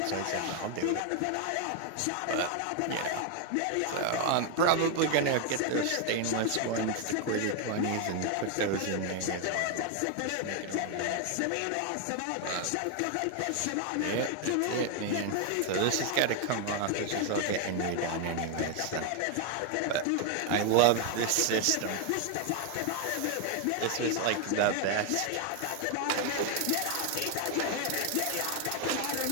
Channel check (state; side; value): different; both; correlation 0.01